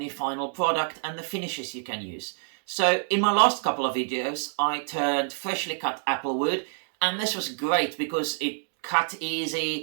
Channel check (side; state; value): left; silent; digital silence